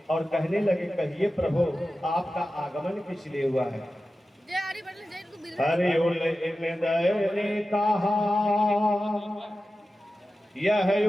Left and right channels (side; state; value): both; normal; correlation 0.94